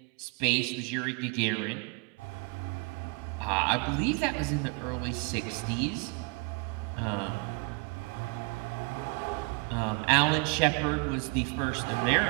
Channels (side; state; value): left; quieter; 30.1 dB